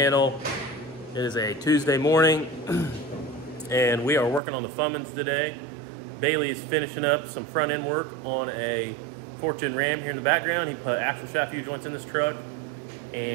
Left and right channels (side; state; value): left; drops out; at 4.4 s